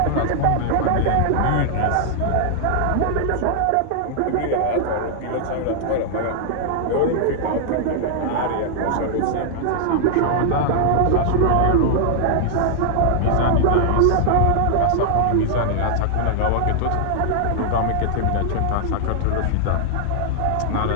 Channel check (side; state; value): both; different; correlation -0.01